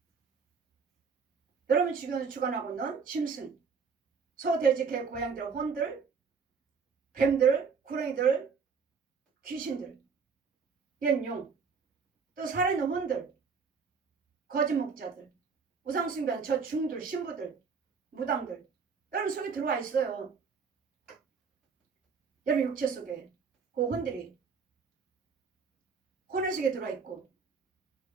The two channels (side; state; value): left; quieter; 5.5 dB